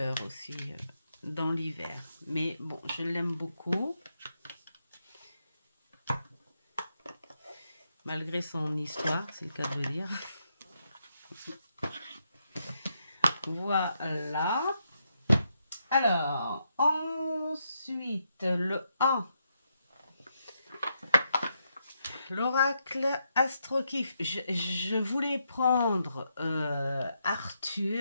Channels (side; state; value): both; inverted; correlation -0.81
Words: aussi dans l'hiver. Mais bon, je l'aime beaucoup. Malgré son histoire, c'est le cas de le dire. Voilà. Alors, ensuite, le A. L'oracle Astrokif. Je voulais prendre